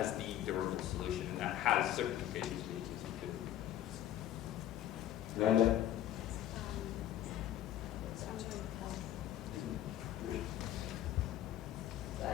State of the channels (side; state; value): right; quieter; 12.2 dB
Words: the durable solution, and that has certain implications for the agency too. Lala?